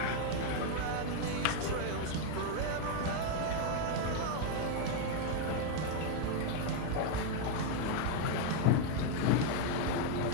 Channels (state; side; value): different; both; correlation 0.00